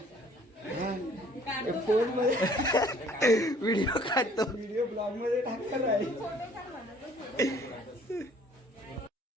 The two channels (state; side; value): normal; both; correlation 0.56